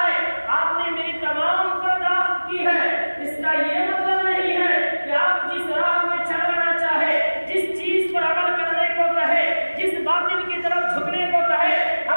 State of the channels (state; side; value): inverted; both; correlation -1.00